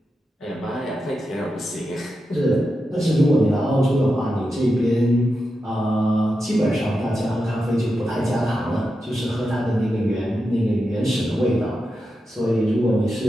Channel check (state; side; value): normal; both; correlation 0.89